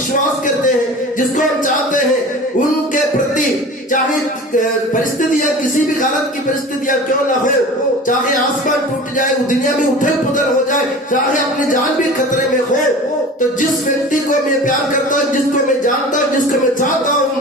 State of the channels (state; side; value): normal; both; correlation 0.37